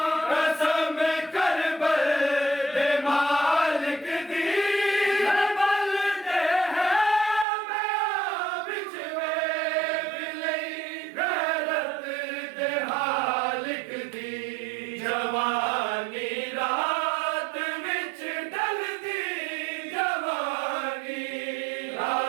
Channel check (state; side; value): drops out; left; at 7.5 s